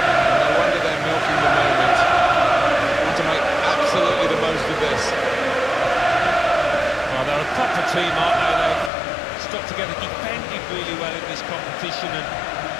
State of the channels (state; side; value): drops out; right; at 8.9 s